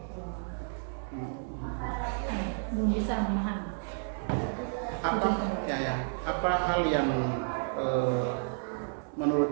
bisa memahami. Apa hal yang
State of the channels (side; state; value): left; silent; digital silence